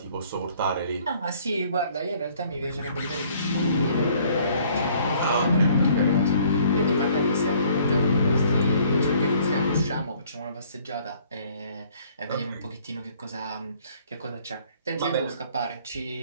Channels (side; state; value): both; inverted; correlation -0.59